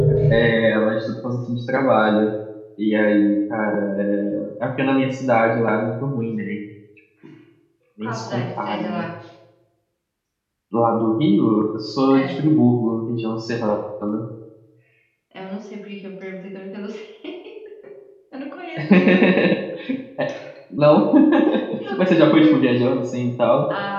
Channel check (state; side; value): identical; both; correlation 1.00